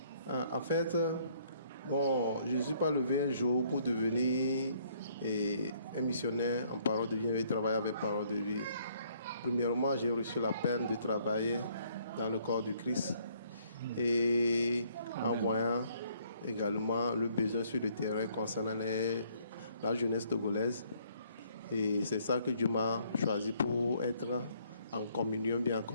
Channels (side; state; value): both; inverted; correlation -0.65